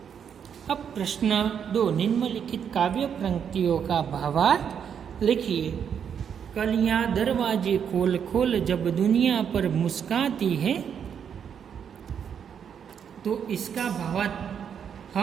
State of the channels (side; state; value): left; quieter; 7.9 dB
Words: अब प्रश्न 2, निम्नलिखित काव्य पंक्तियों का भावार्थ लिखिए। कलियां दरवाजे खोल खोल जब दुनिया पर मुस्काती है। तो इसका भावार्थ